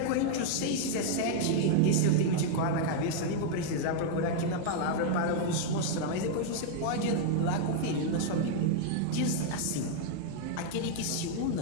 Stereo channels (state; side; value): different; both; correlation 0.00